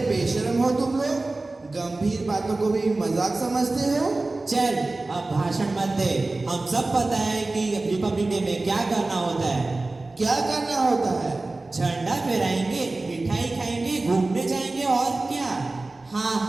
बेशर्म हो तुम लोग, गंभीर बातों को भी मजाक समझते हो। चल अब भाषण मत दे, हम सब पता है कि रिपब्लिक डे में क्या करना होता है। क्या करना होता है? झंडा फहराएंगे, मिठाई खाएंगे, घूमने जाएंगे और क्या? हाँ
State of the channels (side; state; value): left; quieter; 3.2 dB